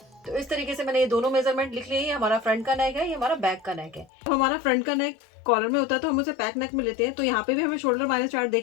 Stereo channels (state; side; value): drops out; right; at 4.0 s